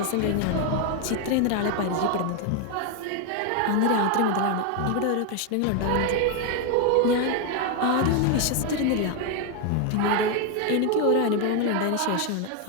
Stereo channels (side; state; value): both; different; correlation 0.01